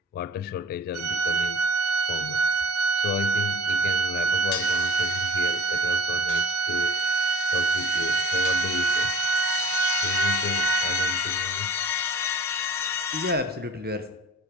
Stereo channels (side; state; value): both; normal; correlation 0.41